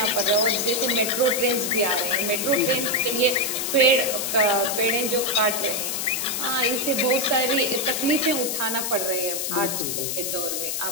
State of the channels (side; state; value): left; noise; hiss, 2 dB below the sound